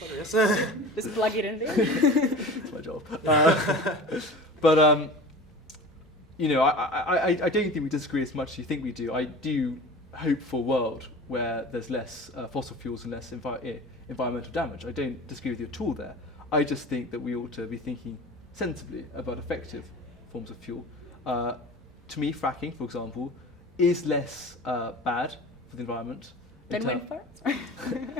yes. Just plug it in there. That's my job. But I don't think we disagree as much as you think we do. I do hope for a world where there's less fossil fuels and less environmental damage. I don't disagree with you at all there. I just think that we ought to be thinking sensibly about effective forms of fuel. To me, fracking, for example, is less bad for the environment Than wind farms?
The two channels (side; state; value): both; normal; correlation 0.37